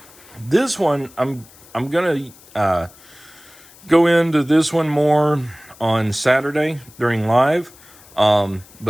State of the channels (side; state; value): left; noise; hiss, 24 dB below the sound